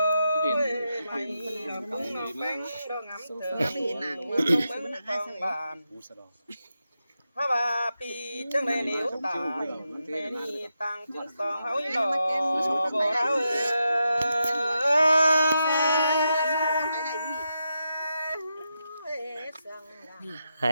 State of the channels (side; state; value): both; inverted; correlation -0.86